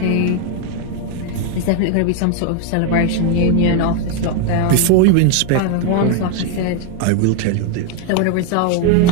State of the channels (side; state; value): both; different; correlation 0.01